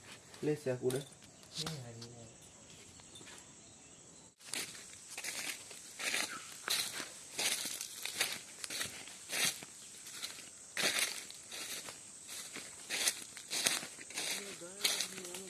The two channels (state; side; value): identical; both; correlation 1.00